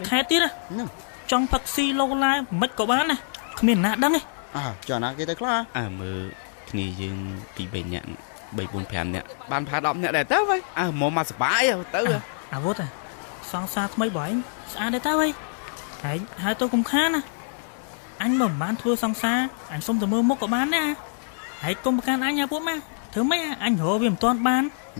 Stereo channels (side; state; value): right; silent; 61 dB below the other